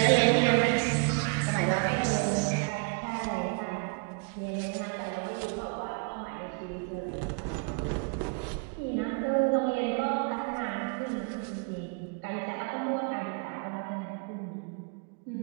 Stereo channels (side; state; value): left; quieter; 36.3 dB